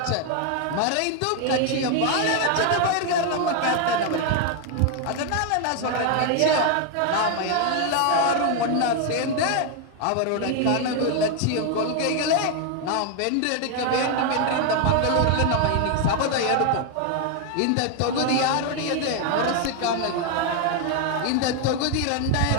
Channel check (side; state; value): both; different; correlation 0.01